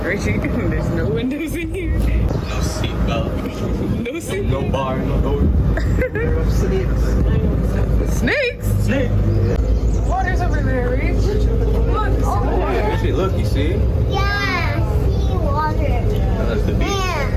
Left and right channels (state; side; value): identical; both; correlation 1.00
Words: Richie, there's no windows in here. No seatbelt. No seat. No bar, no door. There are snakes. Snakes? Snake. Water's over there, Rich. Look. Actually, look, you see? Yeah, see water. That's the beach.